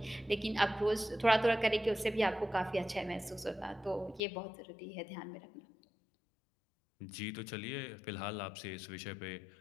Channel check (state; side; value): drops out; right; at 4.2 s